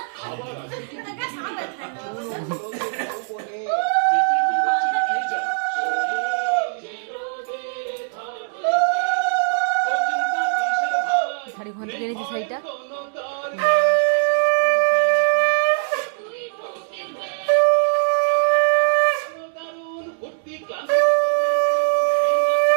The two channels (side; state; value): left; silent; digital silence